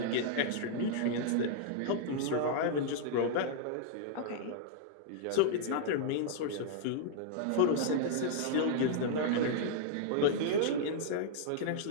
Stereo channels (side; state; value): both; different; correlation -0.01